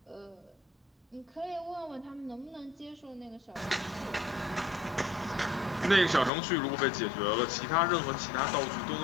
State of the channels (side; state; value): right; drops out; at 6.3 s